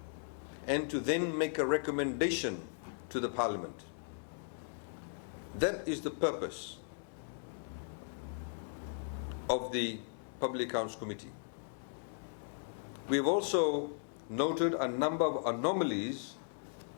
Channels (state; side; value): silent; right; digital silence